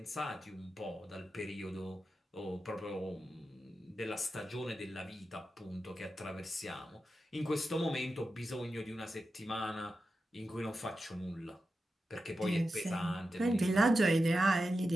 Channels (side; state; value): both; normal; correlation 0.90